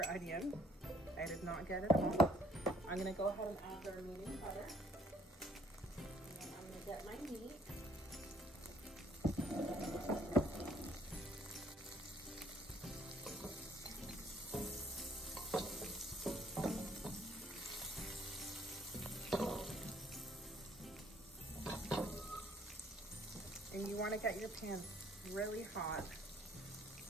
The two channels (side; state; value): both; normal; correlation 0.63